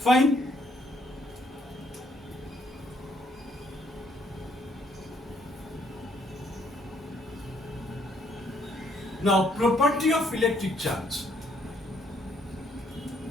Now, property of electric charge.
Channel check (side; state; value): both; normal; correlation 0.69